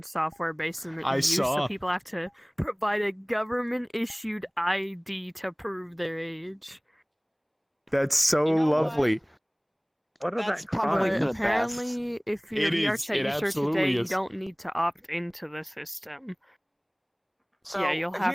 software based in the EU, so people have to provide a government-issued ID to prove their age. That's so lovely. What is that? Probably apparently, if you're VR chat user today, you don't need to opt into the system. So, yeah, you'll have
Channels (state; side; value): identical; both; correlation 1.00